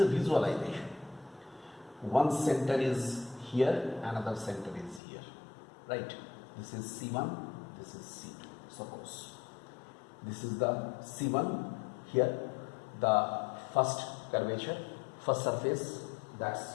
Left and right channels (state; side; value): drops out; right; at 5.0 s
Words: a visualization. One center is here, another center is here. Right? This is C1, this is C2. Suppose this is the C1, here the first curvature, first surface,